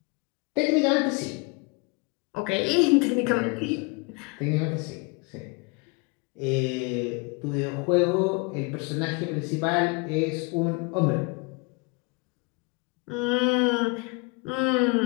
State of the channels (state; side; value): quieter; right; 29.4 dB